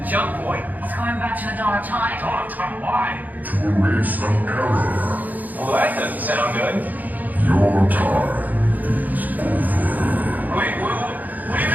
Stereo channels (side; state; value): left; late; 0.082 ms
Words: jump point. He's going back to the dawn of time. Dawn of time, why? To erase an error. Well, that doesn't sound good. Your time is over. Wait, what do you